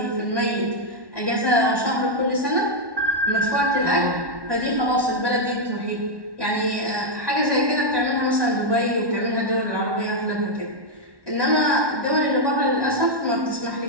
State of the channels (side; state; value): left; late; 1.1 ms